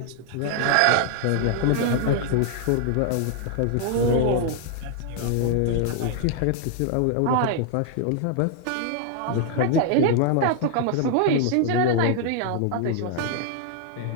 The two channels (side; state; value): both; different; correlation 0.00